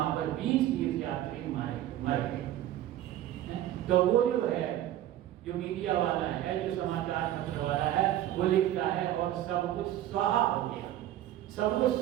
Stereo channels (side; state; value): left; quieter; 12.8 dB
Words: पर 20 तीर्थ यात्री मर गए। तो वो जो है जो मीडिया वाला है, जो समाचार पत्र वाला है, वो लिखता है और सब कुछ स्वाहा हो गया। सब कुछ